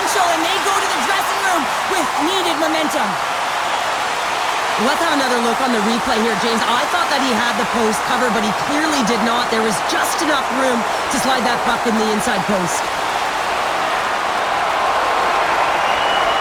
and they go to the dressing room with needed momentum. Let's have another look on the replay here, James. I thought that he had the post covered, but he clearly did not. There was just enough room to slide that puck in the inside post.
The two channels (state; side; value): identical; both; correlation 1.00